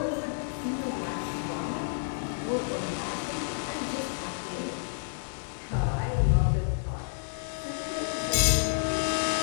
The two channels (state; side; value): silent; right; 58 dB below the other